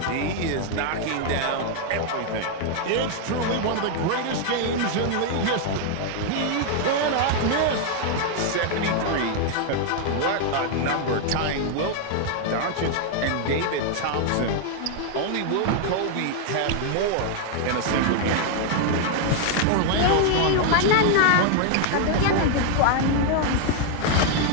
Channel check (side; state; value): both; different; correlation 0.00